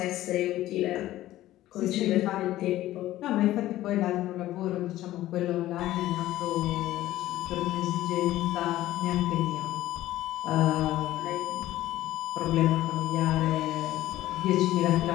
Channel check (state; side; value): quieter; right; 14.9 dB